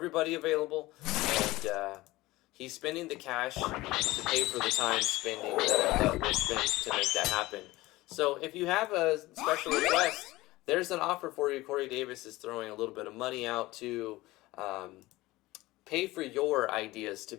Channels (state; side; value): quieter; right; 19.0 dB